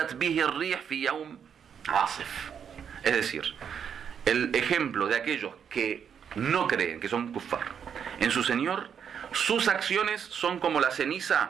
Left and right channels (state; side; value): quieter; left; 7.7 dB